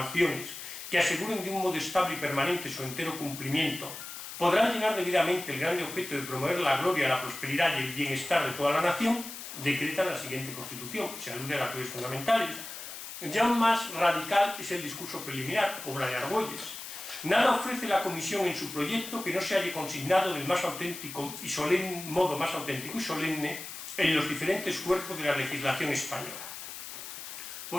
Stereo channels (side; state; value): left; noise; hiss, 10 dB below the sound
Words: que aseguren de un modo estable y permanente su entero cumplimiento, podrán llenar debidamente el grande objeto de promover la gloria, la prosperidad y el bienestar de toda la nación, decretan la siguiente Constitución. Se alude a las leyes fundamentales. Ya aún más radical es el discurso preliminar, obra de Argüelles. Nada ofrece la Comisión en su proyecto que no se haya consignado del más auténtico y solemne modo más auténtico y solemne en los diferentes cuerpos de la legislación española.